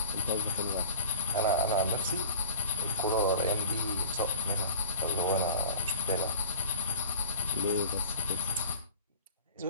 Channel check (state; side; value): inverted; both; correlation -0.39